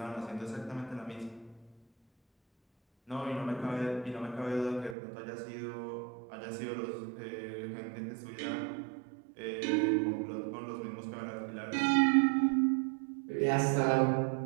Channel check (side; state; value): left; drops out; at 5.0 s